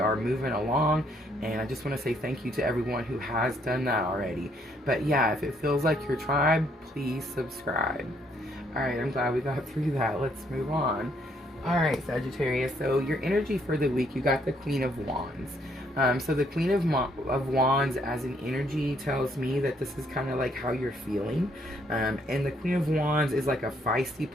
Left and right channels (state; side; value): normal; both; correlation 0.69